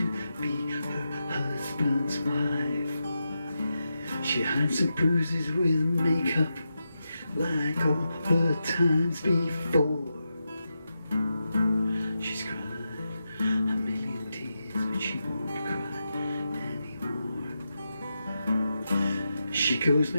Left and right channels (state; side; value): inverted; both; correlation -0.88